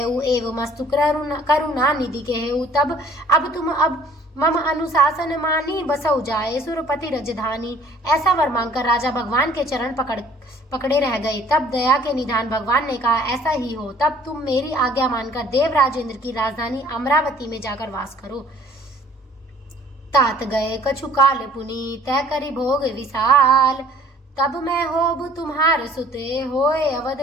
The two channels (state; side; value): normal; both; correlation 0.55